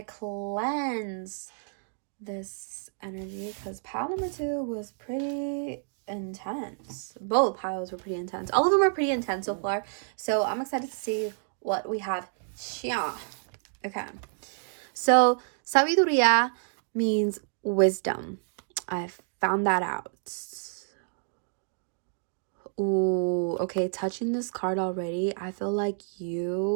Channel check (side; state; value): left; silent; digital silence